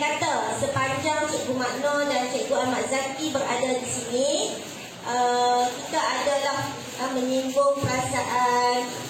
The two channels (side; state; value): both; identical; correlation 1.00